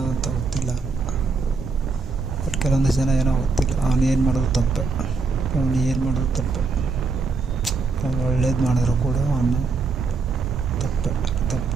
ಅಂತ ಗೊತ್ತಿಲ್ಲ, ಬಟ್ ಕೆಲವೊಂದು ಜನ ಏನೋ ಗೊತ್ತಿಲ್ಲ, ಅವನು ಏನು ಮಾಡೋದು ತಪ್ಪೆ, ಅವ್ನು ಒಳ್ಳೇದು ಮಾಡಿದ್ರು ಕೂಡ ಅವನು ತಪ್ಪು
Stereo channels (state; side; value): quieter; left; 4.4 dB